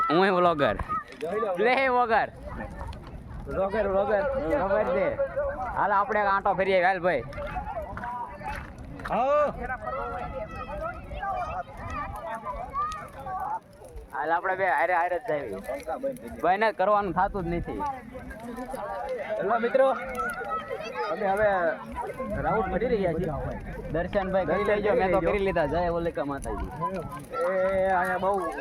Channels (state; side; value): identical; both; correlation 1.00